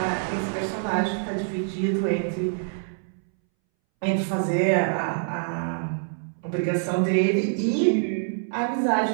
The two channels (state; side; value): silent; left; 61 dB below the other